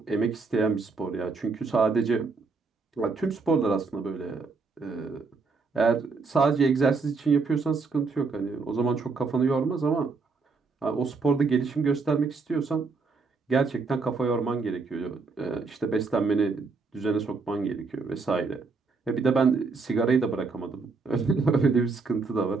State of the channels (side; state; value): left; quieter; 4.4 dB